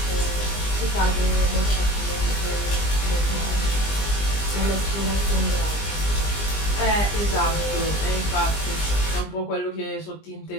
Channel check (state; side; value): late; right; 20 ms